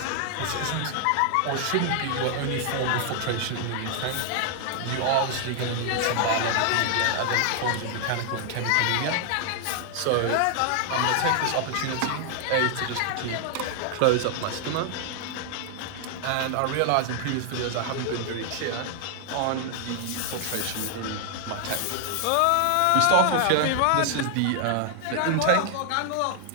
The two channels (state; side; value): different; both; correlation 0.00